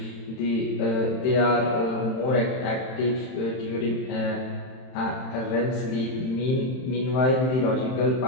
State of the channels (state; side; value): late; right; 31 ms